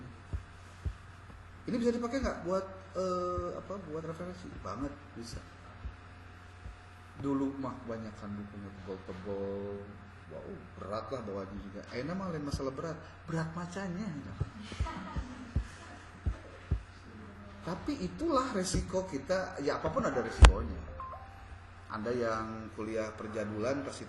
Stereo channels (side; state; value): both; identical; correlation 1.00